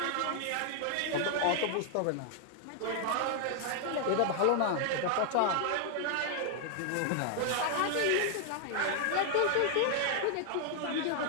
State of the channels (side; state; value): both; different; correlation 0.00